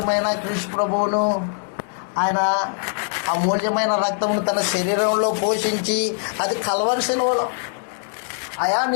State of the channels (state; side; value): silent; right; digital silence